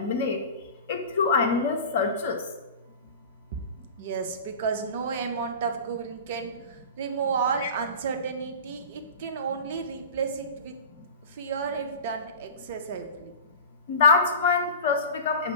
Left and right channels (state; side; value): inverted; both; correlation -0.34